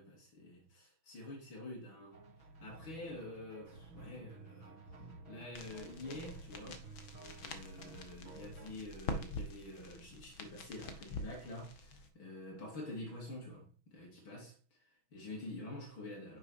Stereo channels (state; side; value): late; right; 6.2 ms